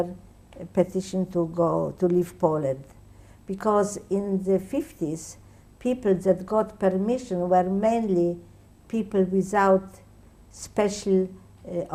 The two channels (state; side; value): identical; both; correlation 1.00